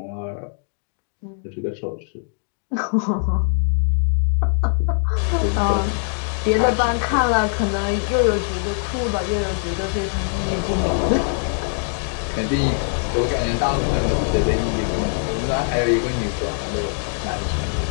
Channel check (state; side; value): silent; right; 64 dB below the other